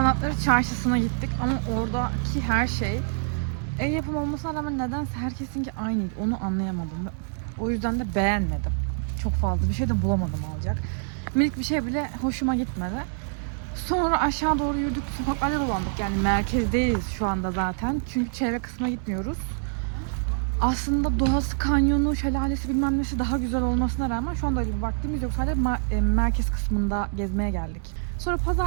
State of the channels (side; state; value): left; silent; digital silence